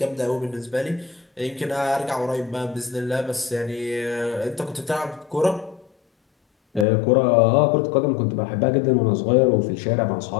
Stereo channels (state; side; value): drops out; right; at 6.9 s